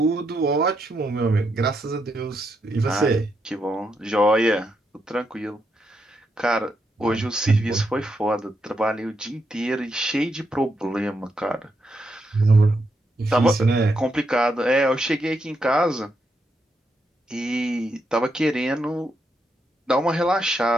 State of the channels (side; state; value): both; normal; correlation 0.81